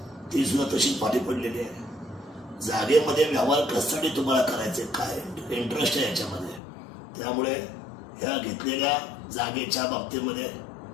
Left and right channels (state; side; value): drops out; right; at 6.6 s